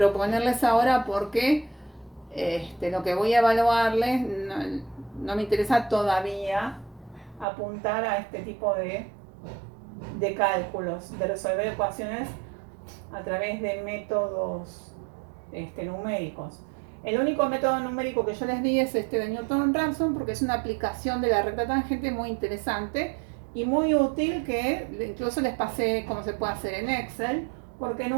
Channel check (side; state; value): left; drops out; at 7.5 s